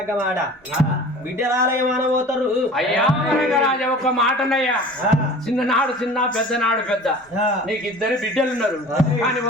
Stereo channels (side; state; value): both; normal; correlation 0.42